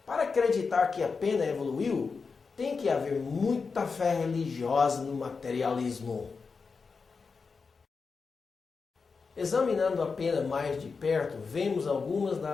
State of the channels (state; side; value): quieter; right; 4.9 dB